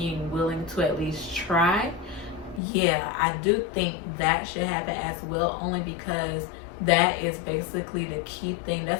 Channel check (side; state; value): right; drops out; at 2.6 s